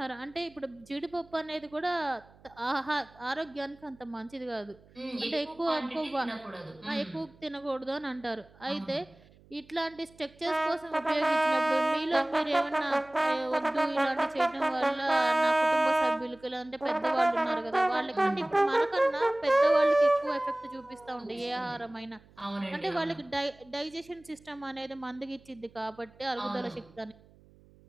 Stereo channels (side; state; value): right; noise; hum, 27 dB below the sound